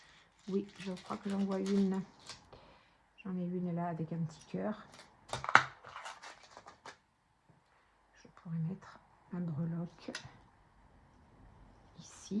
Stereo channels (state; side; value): identical; both; correlation 1.00